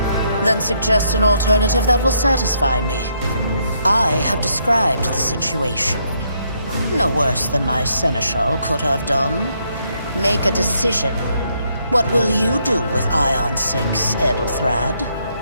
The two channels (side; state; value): both; inverted; correlation -0.74